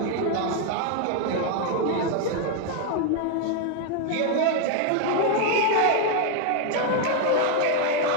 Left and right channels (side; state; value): both; different; correlation 0.00